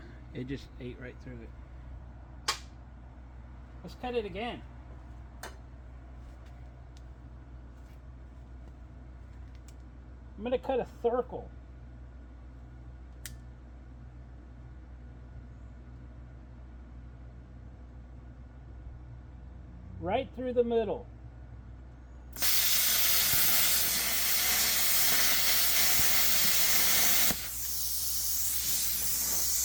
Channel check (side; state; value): both; identical; correlation 1.00